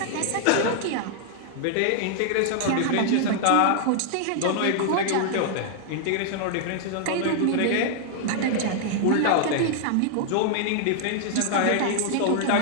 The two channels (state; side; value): different; both; correlation -0.01